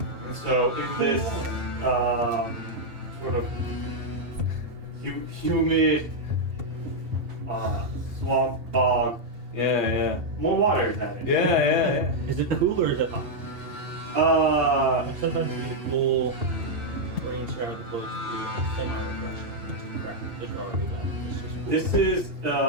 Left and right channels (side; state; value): left; late; 2.7 ms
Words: And so, in this sort of humid swamp bog, Yeah. more water is added. Yeah. Is it cool or is it hot? Sometimes you get a cool rain shower that blows through and it's semi-refreshing. Just crap. Just already wet. It's just cool. This is